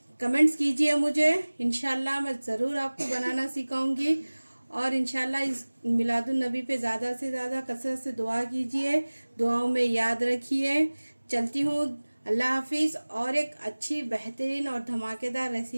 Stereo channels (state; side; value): inverted; both; correlation -1.00